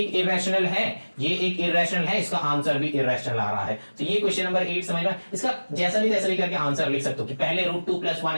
इरेशनल है, ये एक इरेशनल है, इसका आंसर भी इरेशनल आ रहा है। तो ये क्वेश्चन नंबर 8 समझ में, इसका जैसा भी तैसा भी करके आंसर लिख सकते हो कि पहले √2 + 1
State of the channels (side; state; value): both; inverted; correlation -1.00